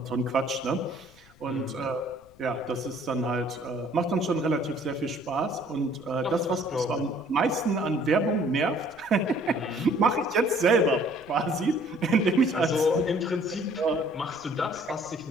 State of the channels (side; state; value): left; noise; rumble, 27 dB below the sound